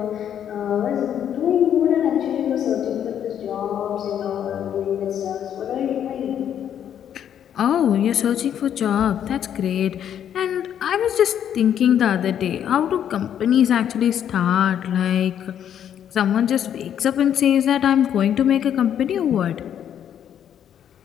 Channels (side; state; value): right; quieter; 9.5 dB